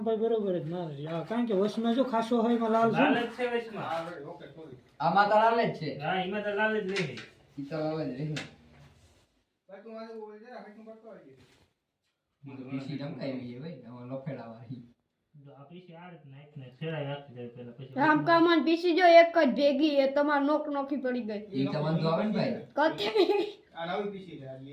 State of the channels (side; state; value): both; identical; correlation 1.00